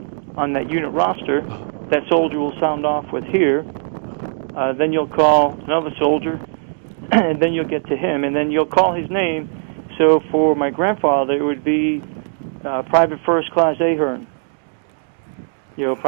that unit roster. That soldier will sound off with here. Then you'll call another soldier, and then you'll get to him, and then you'll call his name. So for my grandfather, it would be Private First Class A'Hearn.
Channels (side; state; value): left; silent; digital silence